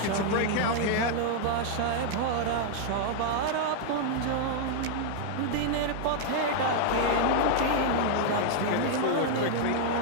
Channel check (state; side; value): different; both; correlation -0.01